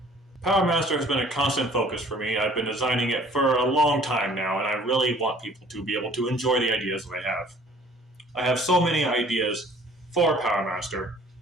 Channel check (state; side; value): normal; both; correlation 0.54